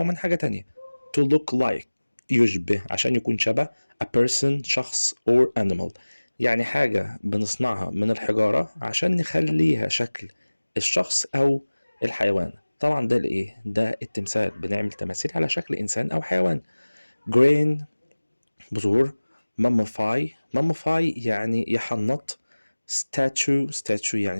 من حاجة تانية to look like يشبه عشان يكون شبه a person شخص or animal يعني حاجة بنصنعها من الحجارة عشان نخليها شكل الشخص أو الحيوان. طبعا ده الإيه؟ ده التمثال، بنعمل تماثيل على شكل إنسان أو حيوان. grain بذور. mummify يعني يحنط. statue يعني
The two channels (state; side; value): inverted; both; correlation -1.00